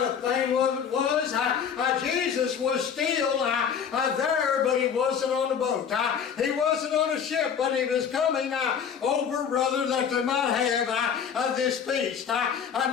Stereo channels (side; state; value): right; quieter; 7.5 dB